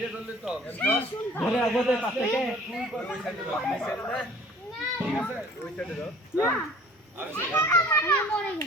ধরে আগে পাশ থেকে ওই সাইডে দাও, এই সাইডে না, ঠিক আছে ওই সাইডে দাও না আর মরে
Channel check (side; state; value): both; normal; correlation 0.50